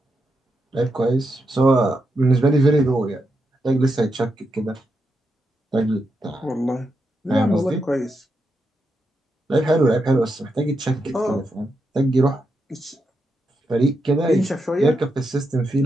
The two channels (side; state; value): both; normal; correlation 0.84